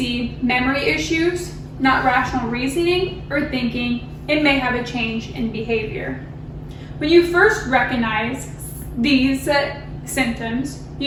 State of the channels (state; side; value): identical; both; correlation 1.00